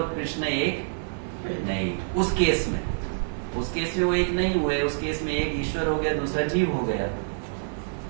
कृष्ण एक नहीं। उस केस में वो एक नहीं हुए, उस केस में एक ईश्वर हो गया, दूसरा जीव हो गया,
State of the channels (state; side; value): silent; left; 58 dB below the other